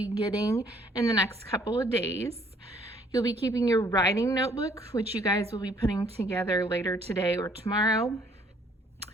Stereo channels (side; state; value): both; normal; correlation 0.62